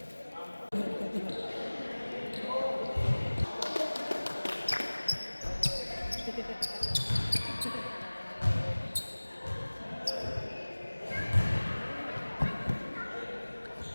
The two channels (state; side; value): inverted; both; correlation -1.00